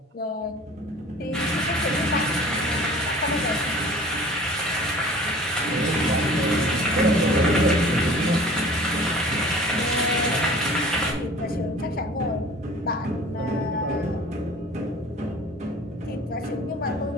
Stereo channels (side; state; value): both; normal; correlation 0.45